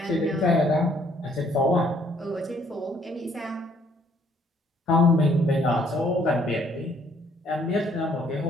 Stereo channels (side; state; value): both; normal; correlation 0.64